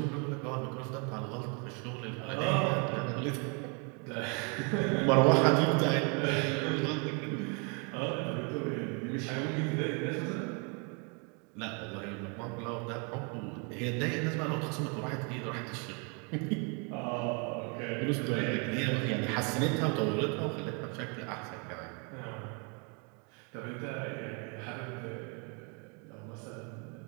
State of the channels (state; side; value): quieter; left; 35.1 dB